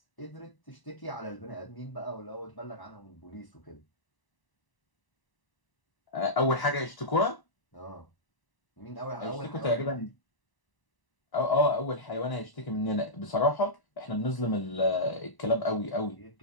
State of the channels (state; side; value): late; right; 1.0 ms